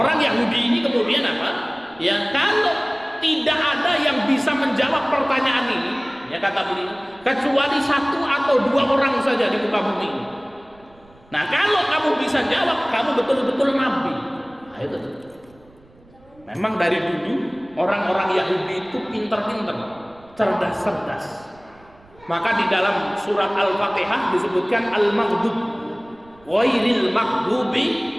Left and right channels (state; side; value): noise; right; rumble, 28 dB below the sound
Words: Yahudi ini kemudian apa? Ya, kalau tidak ada yang bisa menjawab pertanyaan ini, ya kata beliau, kecuali 1 atau 2 orang saja di muka bumi ini. Nah, kalau kamu bisa jawab, kamu betul-betul nabi. Nah, itu. Memang dari dulu orang-orang Yahudi itu pintar-pintar, cerdas-cerdas. Maka di dalam surat Al-Fatihah disebutkan al-maghdub ghairil maghdubi